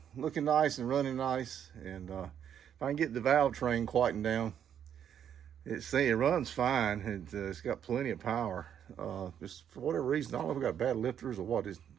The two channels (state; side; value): quieter; left; 9.1 dB